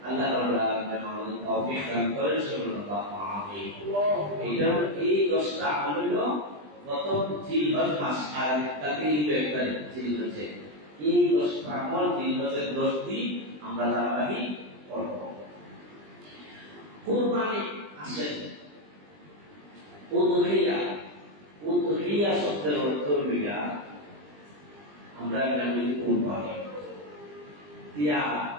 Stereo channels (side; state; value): left; late; 20 ms